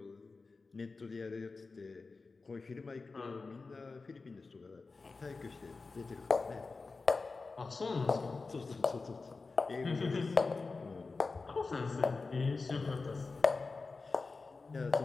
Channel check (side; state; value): right; quieter; 4.0 dB